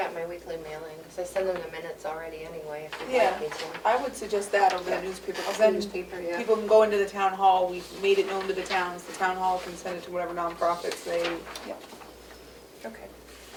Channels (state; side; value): identical; both; correlation 1.00